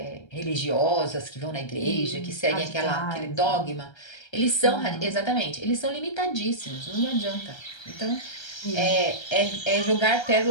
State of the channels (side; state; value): right; late; 1.3 ms